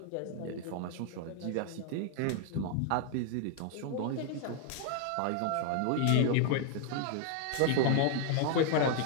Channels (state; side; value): different; both; correlation 0.00